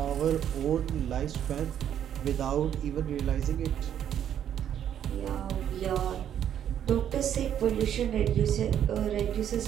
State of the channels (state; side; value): quieter; left; 9.8 dB